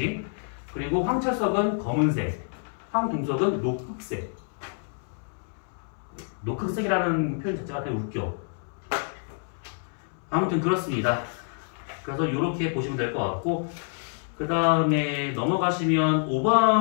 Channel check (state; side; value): silent; right; 60 dB below the other